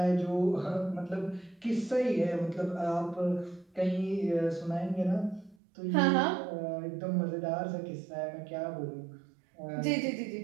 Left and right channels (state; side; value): drops out; left; at 5.6 s